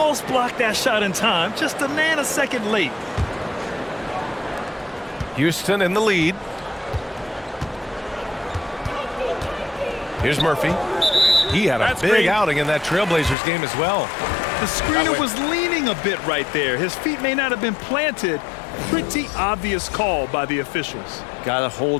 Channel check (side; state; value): right; drops out; at 13.4 s